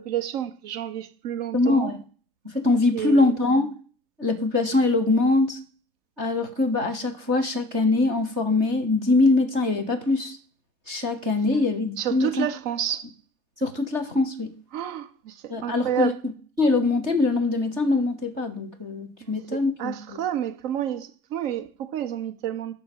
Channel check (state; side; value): late; left; 3.3 ms